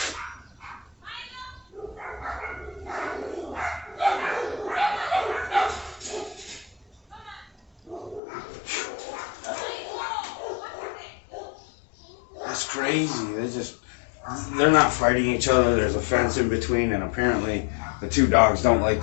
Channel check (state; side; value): drops out; right; at 8.2 s